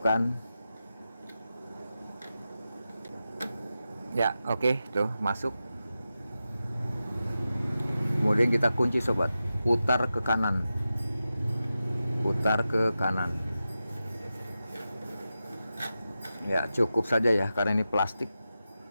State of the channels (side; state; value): both; inverted; correlation -0.92